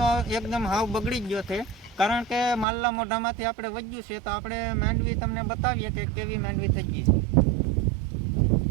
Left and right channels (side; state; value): left; drops out; at 2.7 s